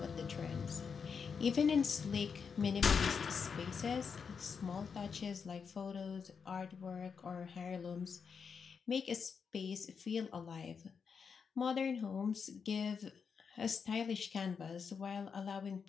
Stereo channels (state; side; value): quieter; right; 6.1 dB